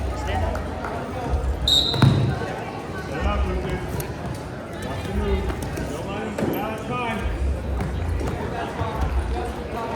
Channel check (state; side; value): identical; both; correlation 1.00